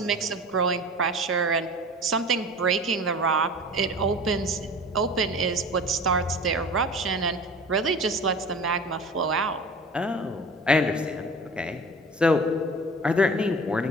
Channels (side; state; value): both; normal; correlation 0.38